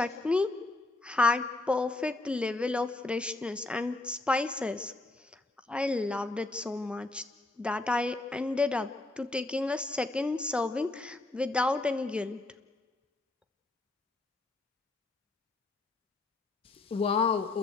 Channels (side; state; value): right; quieter; 3.0 dB